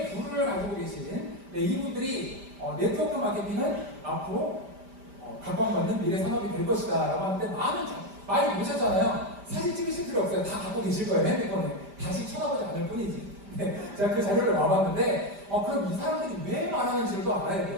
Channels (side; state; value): left; late; 5.0 ms